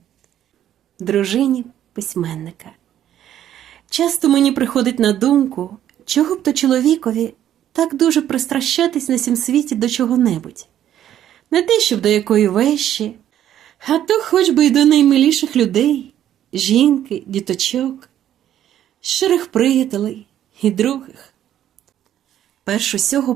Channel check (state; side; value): quieter; left; 11.2 dB